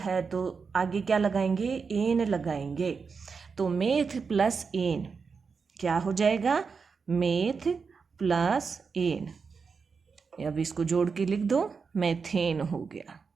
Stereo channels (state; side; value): quieter; left; 5.3 dB